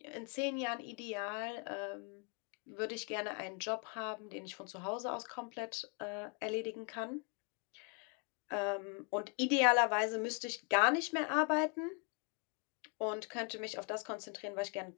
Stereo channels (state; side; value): quieter; right; 35.5 dB